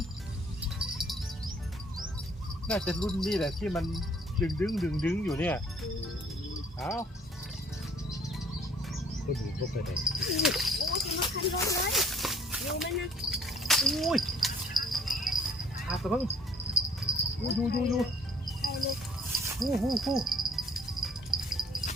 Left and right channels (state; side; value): normal; both; correlation 0.57